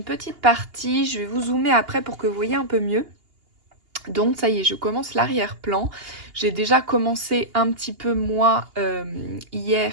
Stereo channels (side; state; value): left; late; 2.8 ms